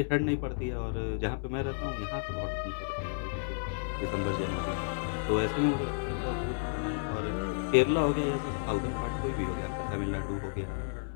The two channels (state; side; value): silent; right; digital silence